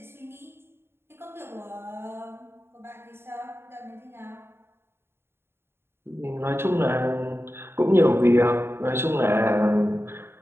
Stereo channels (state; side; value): late; left; 0.11 ms